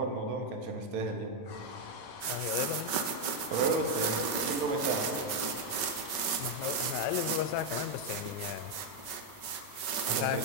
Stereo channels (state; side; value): late; right; 5.3 ms